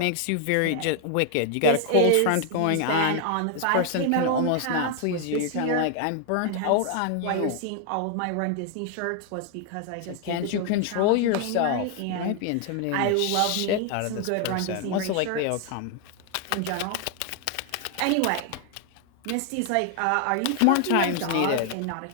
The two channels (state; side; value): different; both; correlation 0.00